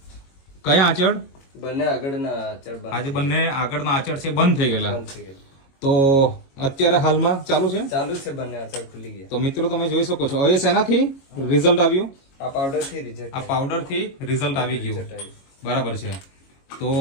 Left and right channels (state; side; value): late; right; 22 ms